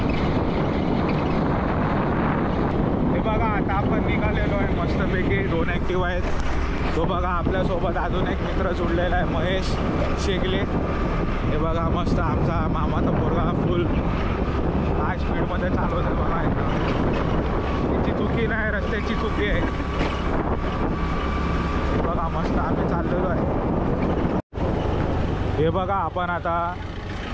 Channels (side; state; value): both; identical; correlation 1.00